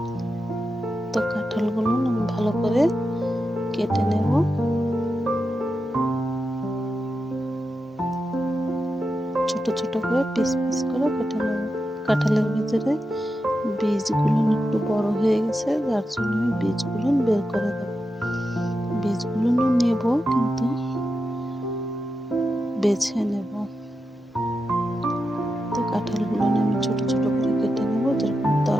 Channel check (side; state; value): both; normal; correlation 0.89